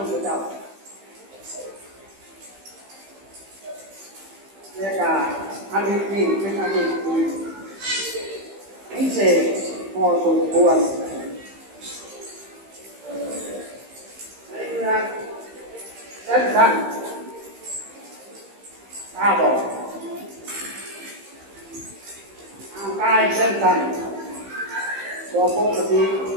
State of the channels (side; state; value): left; late; 15 ms